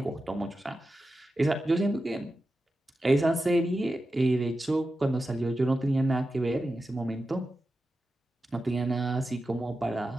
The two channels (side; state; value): both; normal; correlation 0.91